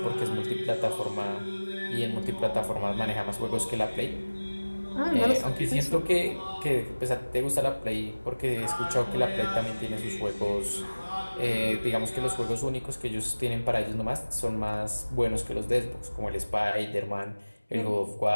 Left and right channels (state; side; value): inverted; both; correlation -1.00